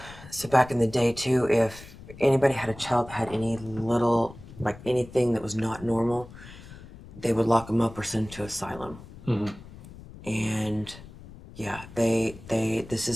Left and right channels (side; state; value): left; noise; rumble, 17 dB below the sound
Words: so back in the day too, if anybody had a child that had any little, like anything that was not normal, they would lock them up or send them to asylum. And yeah, this